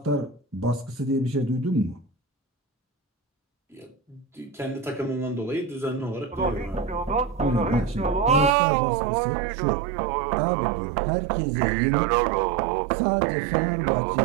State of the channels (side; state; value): left; drops out; at 8.5 s